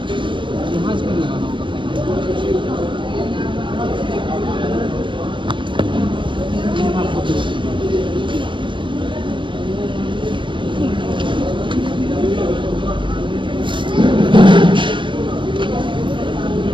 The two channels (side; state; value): left; late; 0.24 ms